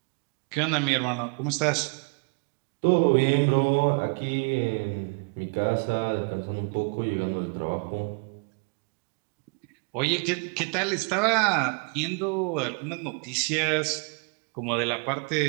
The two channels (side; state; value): left; quieter; 35.2 dB